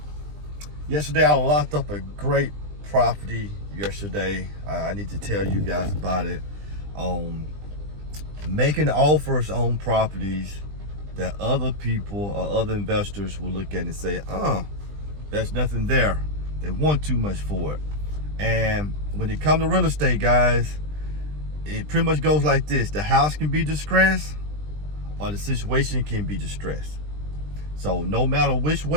Yesterday I locked up a great property yesterday. I need to tell you guys about it. Making offers on properties that other people or other investors will look at and say, there's nothing there. They want too much for it. And when it comes to real estate, guys, it pretty much goes like this. The house can be distressed or the situation can be distressed. So no matter which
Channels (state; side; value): late; left; 20 ms